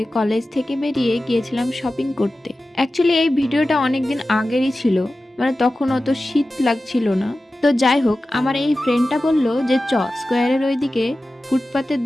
কলেজ থেকে বেরিয়ে গিয়েছিলাম শপিং করতে। অ্যাকচুয়ালি এই ভিডিওটা অনেকদিন আগেরই ছিল, মানে তখন অত শীত লাগছিল না। তো যাই হোক, আমার এই ফ্রেন্ডটা বলল যে স্কোয়ারের ওইদিকে ফুটপাতের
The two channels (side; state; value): both; normal; correlation 0.95